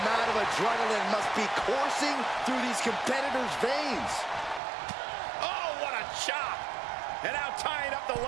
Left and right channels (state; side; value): drops out; left; at 4.6 s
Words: amount of adrenaline must be coursing through these competitors' veins. Oh, what a chop. And now tying up the